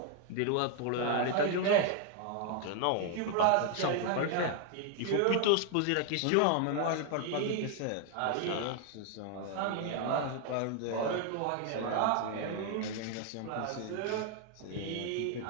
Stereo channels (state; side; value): different; both; correlation 0.00